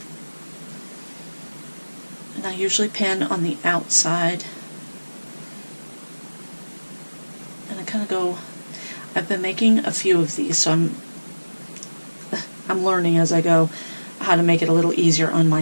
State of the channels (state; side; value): inverted; both; correlation -1.00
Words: And I usually pin on the outside. And I kind of go, I've been making a few of these, so I'm learning as I go how to make it a little easier on